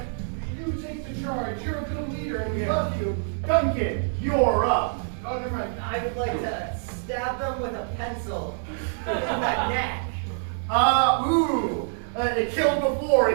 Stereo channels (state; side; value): silent; left; 55 dB below the other